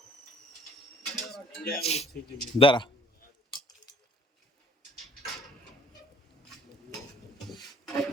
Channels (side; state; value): both; normal; correlation 0.57